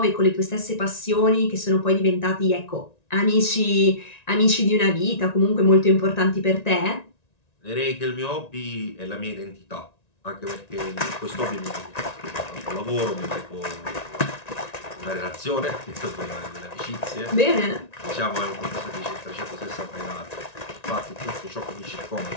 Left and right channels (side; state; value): right; late; 1.9 ms